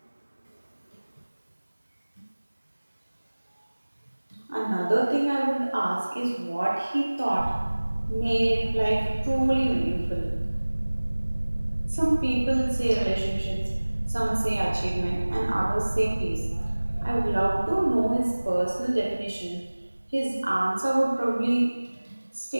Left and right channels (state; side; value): inverted; both; correlation -1.00